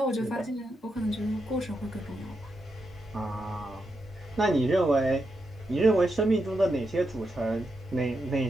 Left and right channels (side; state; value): both; normal; correlation 0.84